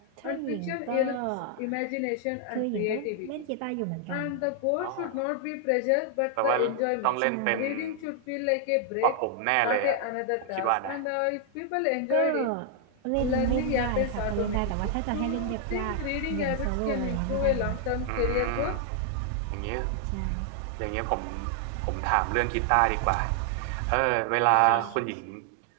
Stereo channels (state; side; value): different; both; correlation 0.00